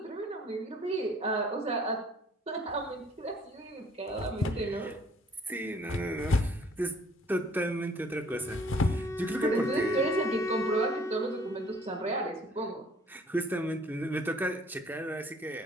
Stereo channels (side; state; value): both; normal; correlation 0.58